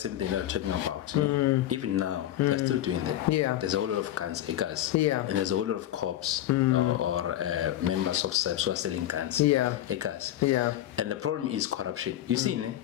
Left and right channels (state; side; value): quieter; right; 12.8 dB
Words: thing they're talking about, even now they're still doing that. Yeah. There's a whole lot of guns, Yeah. and there's a whole lot of cops or members of SAPS who are selling guns, Yeah. Yeah. And the problem is corruption. You see,